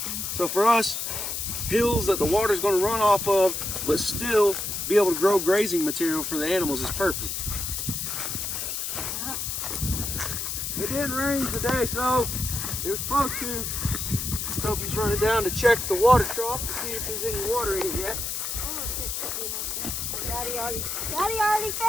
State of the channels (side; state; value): left; noise; hiss, 3 dB below the sound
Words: So for us, hills that the water's going to run off of, but still be able to grow grazing material for the animals is perfect. It didn't rain today, so it was supposed to. Sophie's running down to check the water trough to see if there's any water in it yet. Daddy already